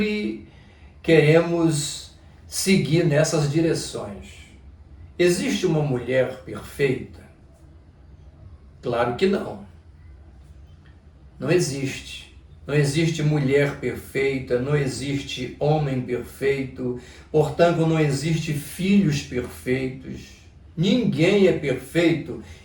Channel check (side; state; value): both; identical; correlation 1.00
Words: queremos seguir nessas direções. Existe uma mulher perfeita? Claro que não. Não existe. Não existe mulher perfeita, não existe homem perfeito, portanto não existe filhos perfeitos. Ninguém é perfeito